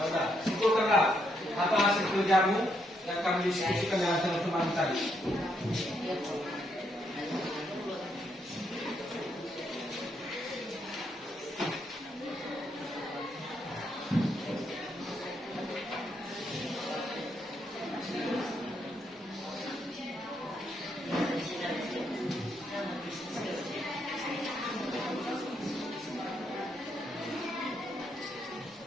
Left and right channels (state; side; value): normal; both; correlation 0.77